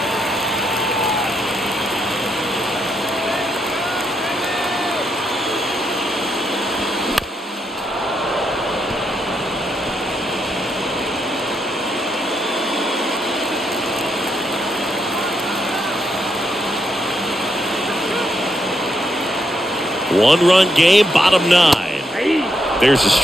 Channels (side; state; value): both; normal; correlation 0.79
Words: One-run game, bottom 9. There's a